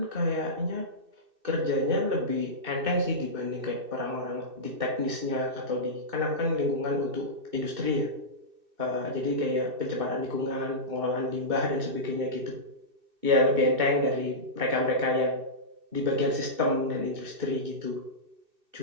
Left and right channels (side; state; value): left; late; 2.6 ms